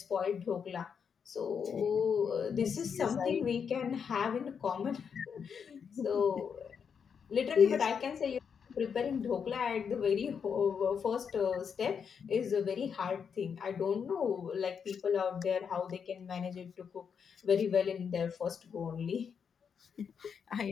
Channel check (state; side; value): quieter; right; 6.8 dB